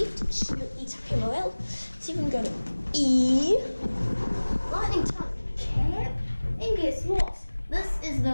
Schindler E-type MRL. So you can go to E, lightning type cab, and guess what? This is the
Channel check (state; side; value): inverted; both; correlation -1.00